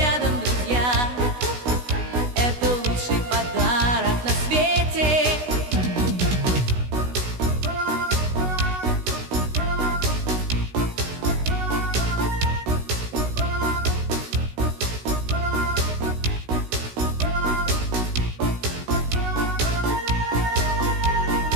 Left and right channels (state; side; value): late; left; 16 ms